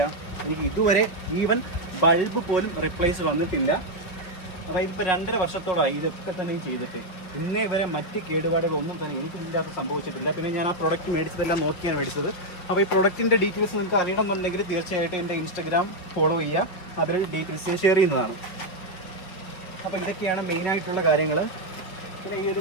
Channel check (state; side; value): late; right; 5.2 ms